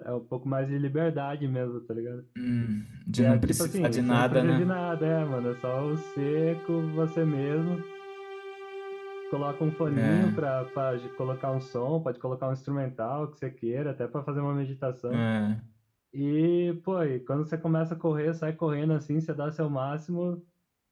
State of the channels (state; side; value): identical; both; correlation 1.00